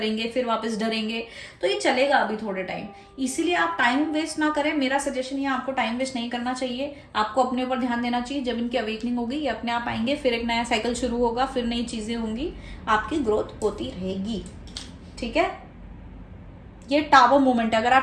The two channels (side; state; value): both; identical; correlation 1.00